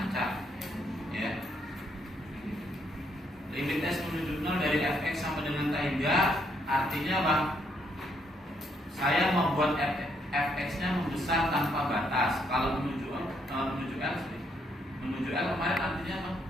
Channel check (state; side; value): normal; both; correlation 0.73